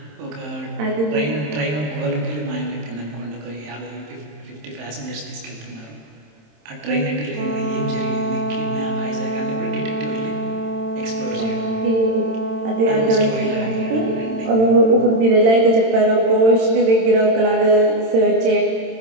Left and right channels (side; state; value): left; late; 27 ms